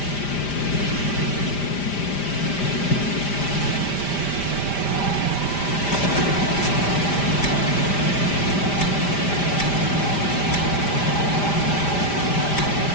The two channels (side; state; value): right; late; 5.0 ms